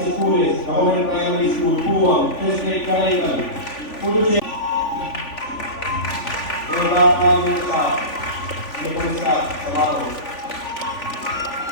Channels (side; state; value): right; late; 3.5 ms